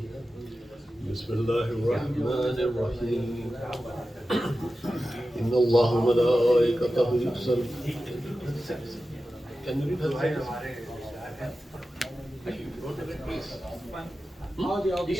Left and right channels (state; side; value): normal; both; correlation 0.93